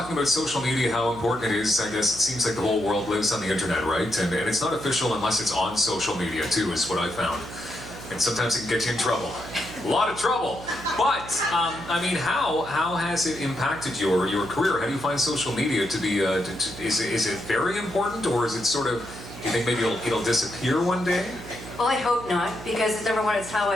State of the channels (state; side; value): noise; right; hum, 14 dB below the sound